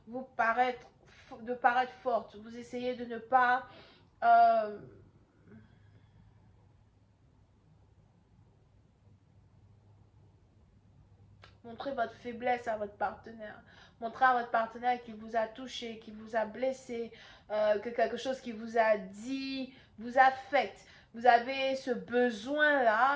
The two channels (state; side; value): identical; both; correlation 1.00